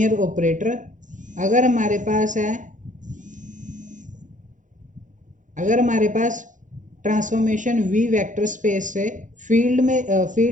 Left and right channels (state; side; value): late; left; 0.37 ms